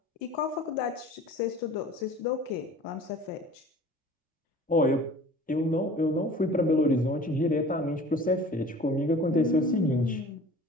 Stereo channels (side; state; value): both; normal; correlation 0.45